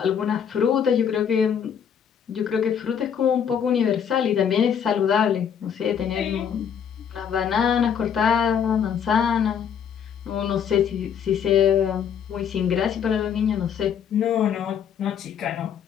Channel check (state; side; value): quieter; right; 8.0 dB